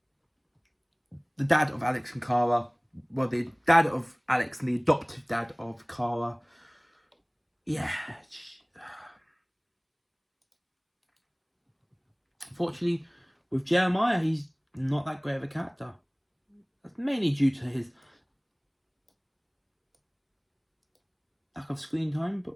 the dad of Alex and Kara. Well, the dad of Alex and the adoptive dad of Kara. Yeah. Unfortunately, with Jeremiah, he's not that great of a character. That's mainly due to his lack of screen time,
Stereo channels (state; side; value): identical; both; correlation 1.00